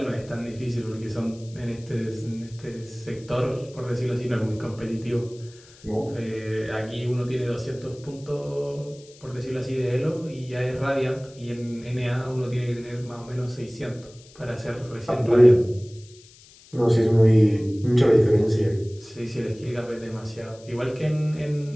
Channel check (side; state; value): left; noise; hiss, 24 dB below the sound